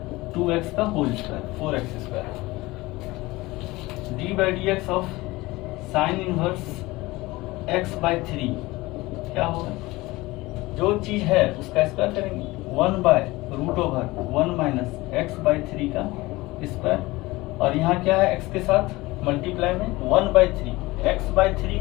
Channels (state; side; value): quieter; right; 20.5 dB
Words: 2x का whole square 4x square. D by D x of sine inverse x/3, क्या होगा जो चीज है उसका स्क्वायर करेंगे 1/√1 माइनस x/3 का स्क्वायर, और यहाँ क्या है x के साथ मल्टीप्लाई में 1/3, x/3